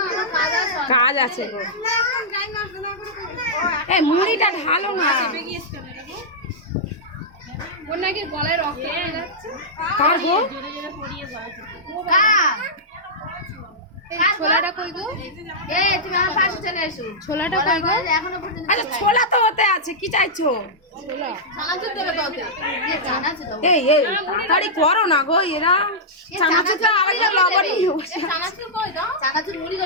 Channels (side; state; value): both; normal; correlation -0.10